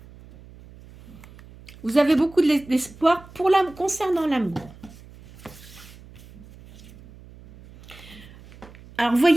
Vous avez beaucoup d'espoir concernant l'amour. Alors, vous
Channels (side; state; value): right; noise; hum, 21 dB below the sound